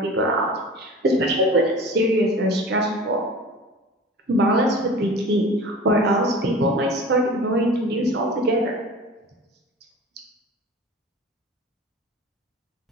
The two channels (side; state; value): both; normal; correlation 0.39